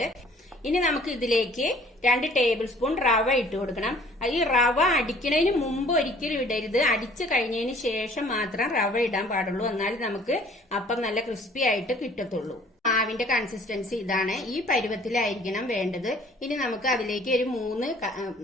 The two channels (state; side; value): normal; both; correlation 0.54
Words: ഇനി നമുക്ക് ഇതിലേക്ക് 2 ടേബിൾ സ്പൂൺ റവ ഇട്ട് കൊടുക്കണം. ഈ റവ അടിക്കുന്നതിന് മുമ്പ് ഒരിക്കലും ഇടരുത്, അടിച്ചു കഴിഞ്ഞതിന് ശേഷം മാത്രം റവ ഇടാൻ പാടുള്ളൂ. എന്നാലും നമുക്ക് അപ്പം നല്ല ക്രിസ്പി ആയിട്ട് കിട്ടത്തുള്ളൂ. മാവിന്റെ കൺസിസ്റ്റൻസി ഇതാണ്, ഈ പരുവത്തിലായിരിക്കണം വേണ്ടത്. ഇനി നമുക്ക് അതിലേക്ക് ഒരു 3